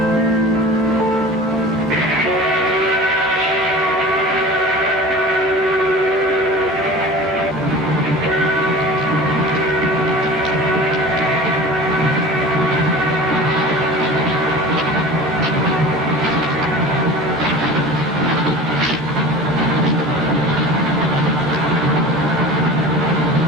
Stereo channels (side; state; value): both; normal; correlation 0.38